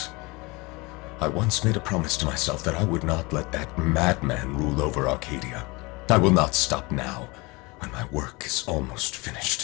I once made a promise to myself that I would not let that madman rule over Arcadia. I will not stop now, when my work is almost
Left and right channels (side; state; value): right; quieter; 25.2 dB